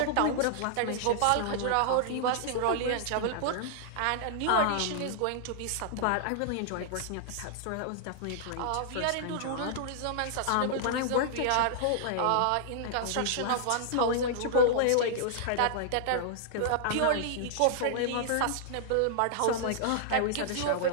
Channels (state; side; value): different; both; correlation -0.01